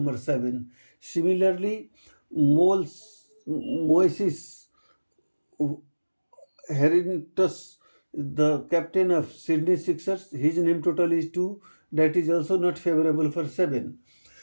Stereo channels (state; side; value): inverted; both; correlation -1.00